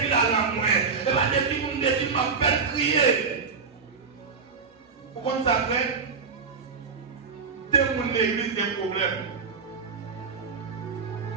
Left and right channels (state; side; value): quieter; left; 5.2 dB